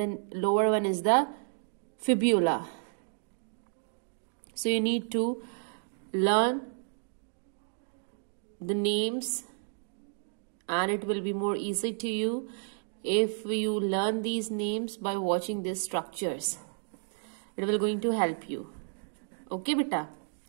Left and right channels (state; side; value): silent; left; digital silence